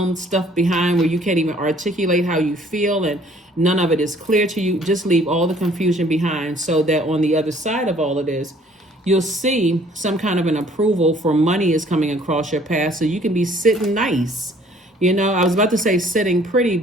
stuff behind where you can't even articulate how you feel and none of it is clear to you. Just leave all the confusion behind, so that on the other side of all of this, you'll see some kind of an approval for money is coming across your path, so you can be sitting nice. I was about to say sitting pretty,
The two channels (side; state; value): both; normal; correlation 0.58